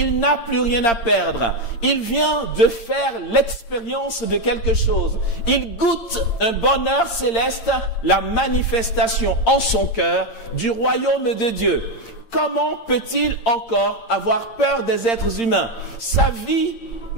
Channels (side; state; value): right; late; 8.7 ms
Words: n'a plus rien à perdre. Il vient de faire l'expérience de quelque chose. Il goûte un bonheur céleste, la manifestation en son cœur du royaume de Dieu. Comment peut-il encore avoir peur des êtres humains? Sa vie